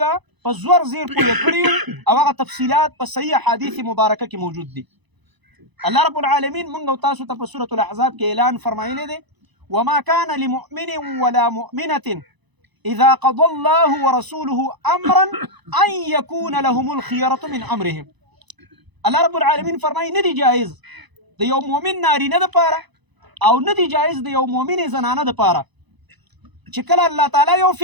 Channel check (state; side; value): late; left; 1.0 ms